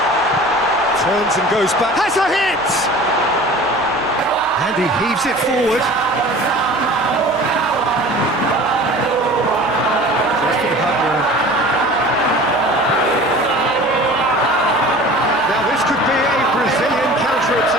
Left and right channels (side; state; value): left; noise; hum, 25 dB below the sound